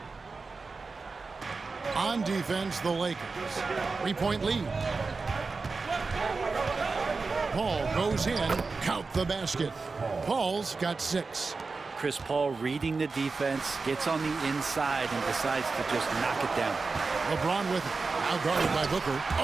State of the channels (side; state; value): left; quieter; 4.2 dB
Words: On defense, the Lakers. 3-point lead. Paul goes in, count the basket. Paul's got 6. Chris Paul reading the defense, gets on the inside and decides to just knock it down. LeBron with it. Now guarded by Booker.